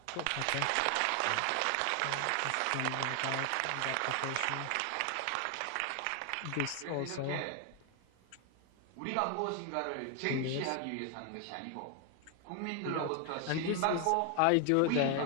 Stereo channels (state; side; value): different; both; correlation 0.01